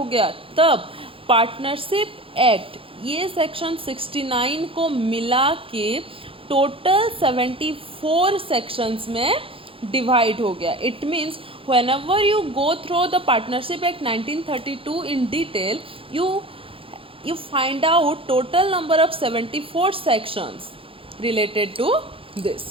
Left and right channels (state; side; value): late; left; 0.26 ms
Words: गया, तब पार्टनरशिप एक्ट ये सेक्शन 69 को मिला के टोटल 74 सेक्शंस में डिवाइड हो गया. It means whenever you go through the Partnership Act 1932 in detail, you find out total number of 74 sections related to